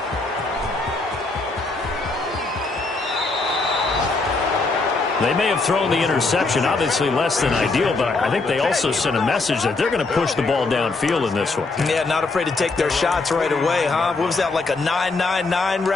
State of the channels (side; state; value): right; quieter; 3.6 dB